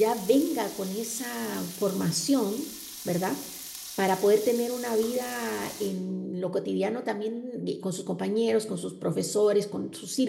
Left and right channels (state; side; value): identical; both; correlation 1.00